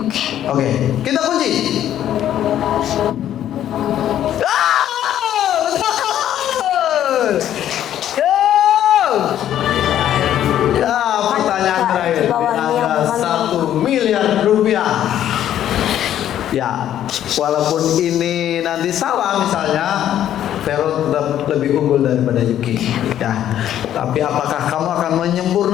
Oke. Kita kunci. Betul! Ya, pertanyaan terakhir. Di bawah ini yang Angka mana? 1 miliar rupiah. Ya, walaupun ini nanti salah misalnya, Vero tetap lebih unggul daripada Yuki. Ya, tapi apakah kamu akan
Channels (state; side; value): quieter; right; 11.2 dB